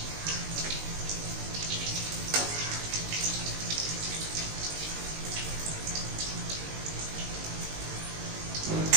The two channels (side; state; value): left; late; 19 ms